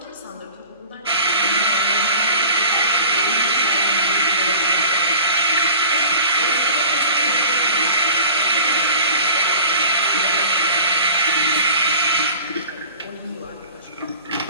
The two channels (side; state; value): both; inverted; correlation -0.41